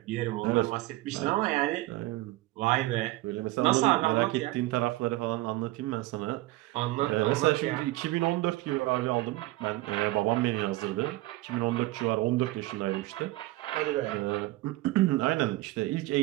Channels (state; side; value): quieter; left; 18.5 dB